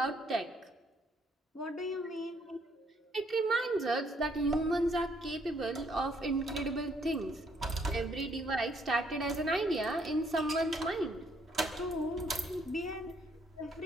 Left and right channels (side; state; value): both; normal; correlation 0.68